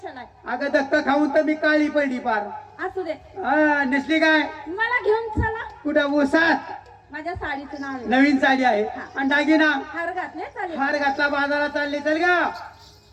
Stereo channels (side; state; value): both; identical; correlation 1.00